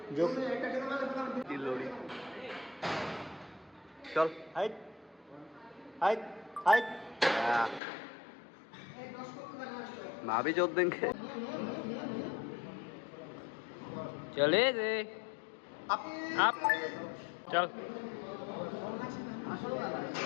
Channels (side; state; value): right; drops out; at 7.8 s